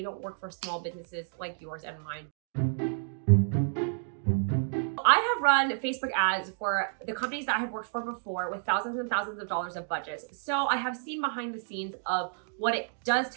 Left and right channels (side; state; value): left; silent; digital silence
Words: don't work for small businesses like yours and mine. I have run Facebook ads for the companies that I have worked for before with thousands and thousands of dollars of budgets. So I have seen behind the scenes of what it does